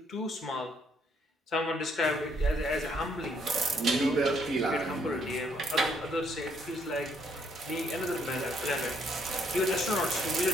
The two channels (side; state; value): both; normal; correlation 0.69